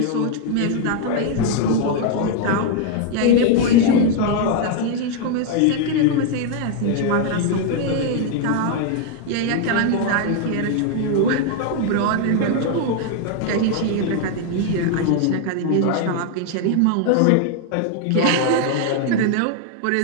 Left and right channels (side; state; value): both; different; correlation 0.00